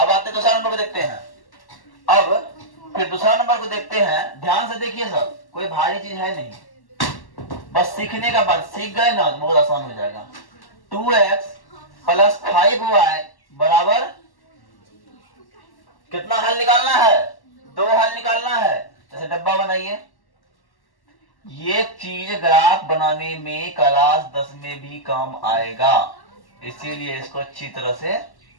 आते दूसरा नंबर को देखते हैं। अब फिर दूसरा नंबर को देखते हैं, ध्यान से देखिए सब, कोई भारी चीज है नहीं, बस सीखने का बात, सीख गए ना तो बहुत आसान हो जाएगा। 2x प्लस 5y बराबर कितना हल निकालना है? 2 हल निकालना है। जैसे डब्बा बनाइए, ये चीज ग्राफ बनाने में क्लास 10 में भी काम आएगा, इसीलिए इसको अच्छी तरह से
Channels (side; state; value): right; late; 1.1 ms